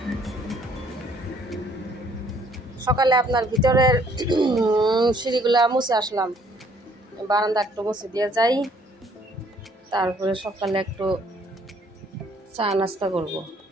সকালে আপনার ভিতরের সিঁড়িগুলা মুছে আসলাম বারান্দা একটু মুছে দিয়ে যাই তারপরে সকালে একটু চা নাস্তা করব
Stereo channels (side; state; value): both; normal; correlation 0.63